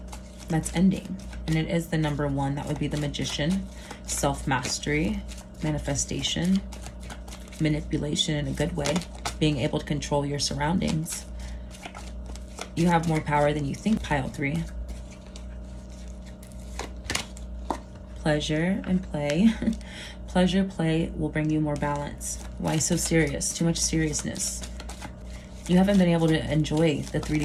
That's ending. And it is the number 1. That would be the Magician, self-mastery, manifestation, manipulation in a good way, being able to control your surroundings. You have more power than you think, pile 3. Pleasure and play. Pleasure, play will bring you more balance. Why so serious? Too much seriousness. You haven't been able to enjoy the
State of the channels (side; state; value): both; identical; correlation 1.00